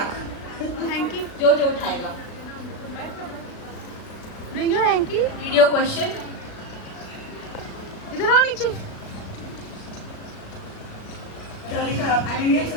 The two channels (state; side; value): late; right; 36 ms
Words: Hanky, जो जो उठाएगा। Bring your hanky. Read your question. इधर आओ नीचे। क्या लिखा है आपने? Indian